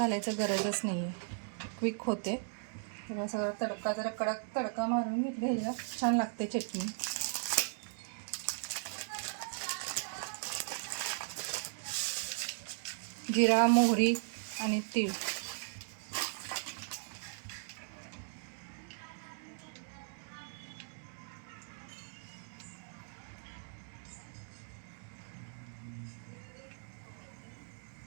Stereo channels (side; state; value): left; silent; digital silence